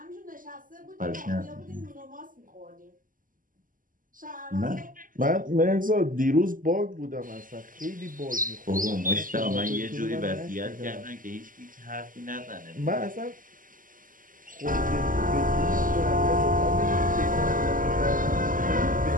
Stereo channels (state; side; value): late; left; 0.39 ms